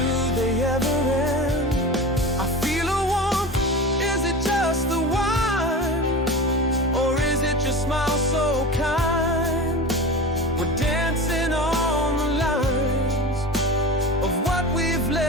they ever end? I feel a warmth, is it just the wine, or is it your smile so kind? We're dancing on the lines of what we've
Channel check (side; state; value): both; normal; correlation 0.31